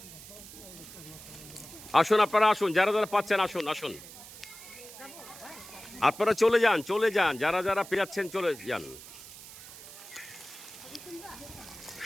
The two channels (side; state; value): right; noise; hiss, 16 dB below the sound